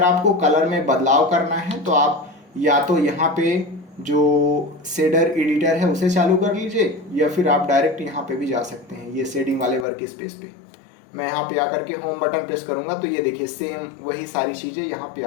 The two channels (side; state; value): right; drops out; at 9.9 s